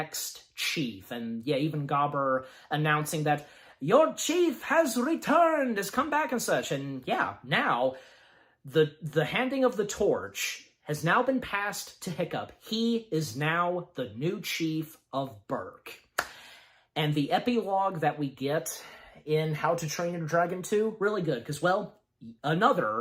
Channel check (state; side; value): identical; both; correlation 1.00